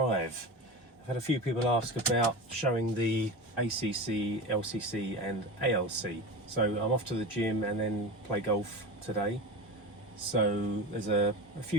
I've had a few people ask about showing the ACC, LCC and ALC. So I'm off to the gym and then play golf today. So there's a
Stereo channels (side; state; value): both; normal; correlation 0.26